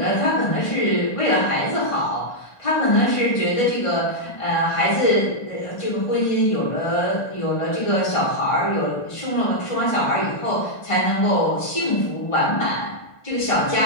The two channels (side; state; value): right; late; 1.2 ms